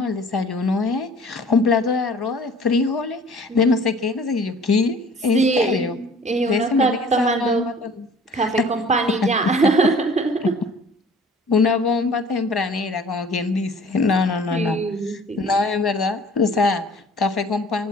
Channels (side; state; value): both; normal; correlation 0.49